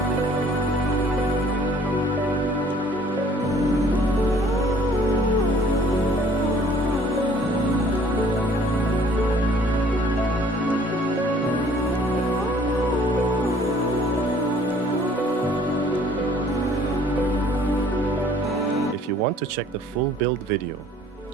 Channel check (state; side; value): normal; both; correlation 0.56